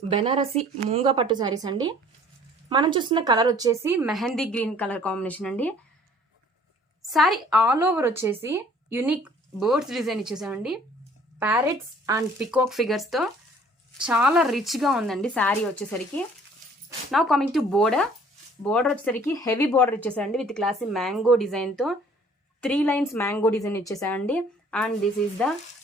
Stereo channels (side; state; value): both; normal; correlation 0.55